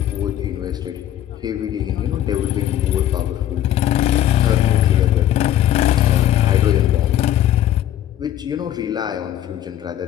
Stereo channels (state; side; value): quieter; right; 11.9 dB